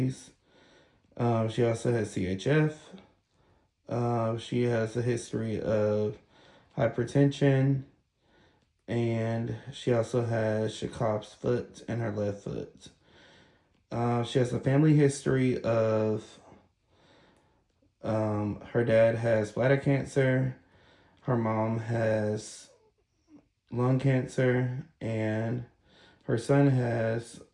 She also has CHF. She has a history of hypertension. And she also has Chekhov's foot in her left foot. She has a family history of her dad has bladder cancer, her mom has lung cancer, and her son has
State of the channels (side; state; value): both; identical; correlation 1.00